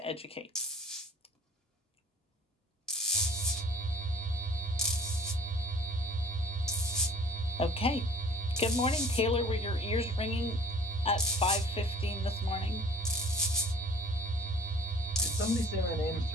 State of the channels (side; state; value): both; normal; correlation 0.49